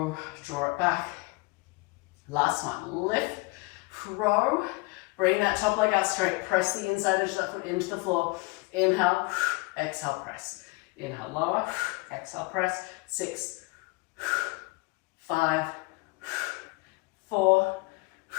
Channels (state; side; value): quieter; right; 26.2 dB